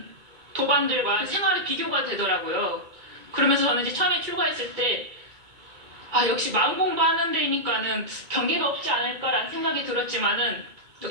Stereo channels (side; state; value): left; late; 2.3 ms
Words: 도반들과 생활의 비교가 되더라고요. 그러면서 저는 이제 처음에 출가했을 때 역시 마음 공부하는 데니까는 경계가 없지 않을까라는 생각이 들었지만은